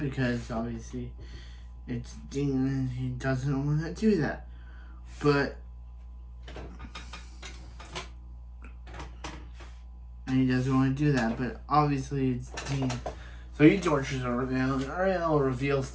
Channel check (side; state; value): both; identical; correlation 1.00